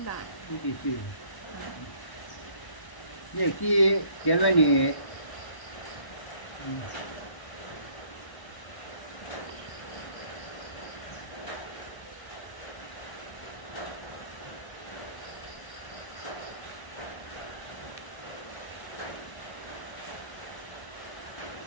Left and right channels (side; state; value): right; late; 1.1 ms